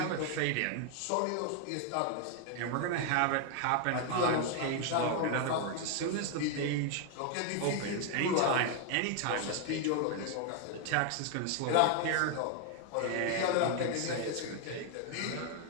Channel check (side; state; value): both; different; correlation 0.00